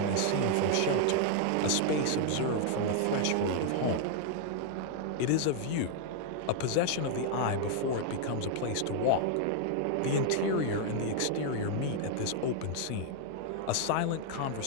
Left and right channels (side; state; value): both; different; correlation 0.00